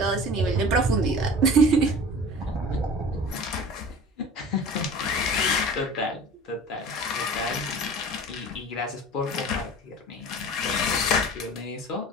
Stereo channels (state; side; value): normal; both; correlation 0.41